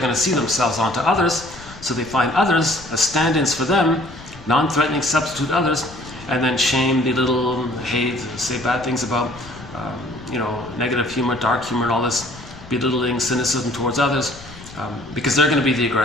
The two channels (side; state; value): left; noise; rumble, 18 dB below the sound